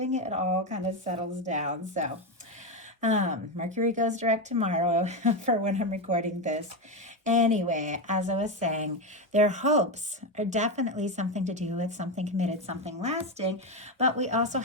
it all kind of settles down. So Mercury goes direct tomorrow for when I'm recording this. Anyway, as I was saying, their hopes are definitely something to do with something committed, something lasting, but we also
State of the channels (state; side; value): normal; both; correlation 0.11